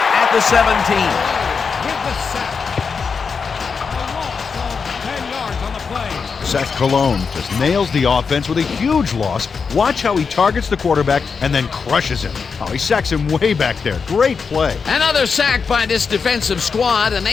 at the 17. With the sack. A loss of 10 yards on the play. Seth Cologne just nails the offense with a huge loss. Watch how he targets the quarterback and then crushes him. Oh, he sacks him way back there. Great play. Another sack by this defensive squad, and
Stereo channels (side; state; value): right; quieter; 5.5 dB